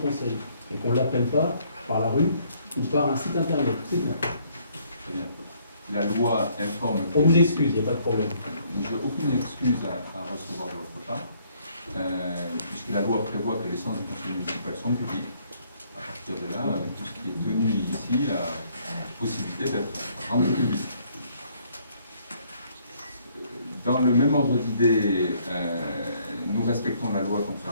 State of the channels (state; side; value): inverted; both; correlation -0.66